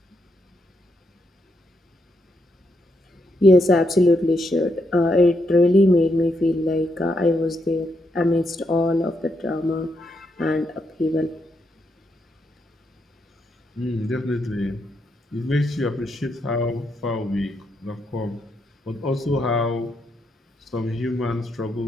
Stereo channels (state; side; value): normal; both; correlation 0.80